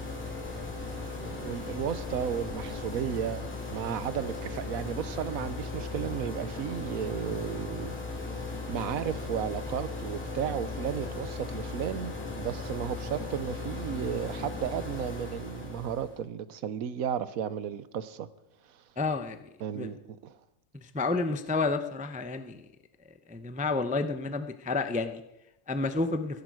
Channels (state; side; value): normal; both; correlation 0.23